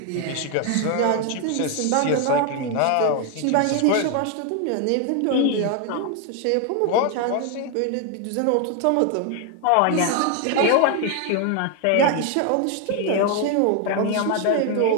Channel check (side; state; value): both; different; correlation 0.01